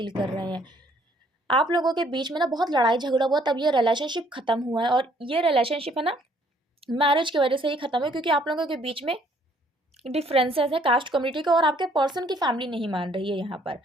कर रहे हैं। आप लोगों के बीच में ना बहुत लड़ाई झगड़ा हुआ, तब ये रिलेशनशिप खत्म हुआ है, और ये रिलेशनशिप है ना मैरिज की वजह से ही खत्म है, क्योंकि आप लोगों के बीच में डिफरेंसेस है कास्ट कम्युनिटी का, और आपके पर्सन की फैमिली नहीं मान रही है यहाँ पर।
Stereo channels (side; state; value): both; normal; correlation 0.63